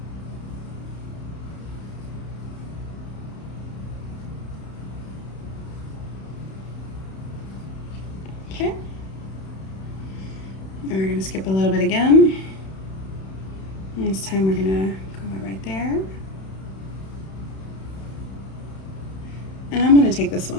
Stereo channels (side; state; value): right; late; 31 ms